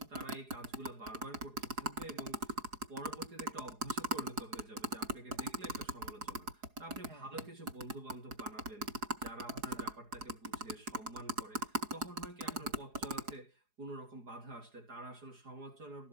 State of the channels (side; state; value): left; late; 4.8 ms